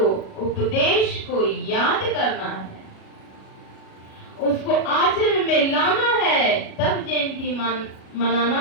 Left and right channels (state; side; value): late; right; 37 ms